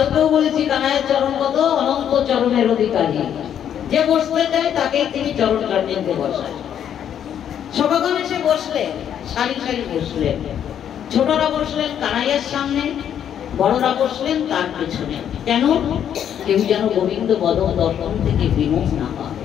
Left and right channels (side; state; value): right; quieter; 9.4 dB